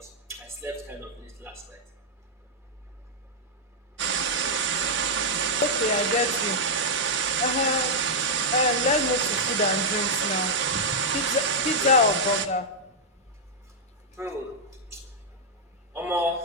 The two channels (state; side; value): normal; both; correlation -0.05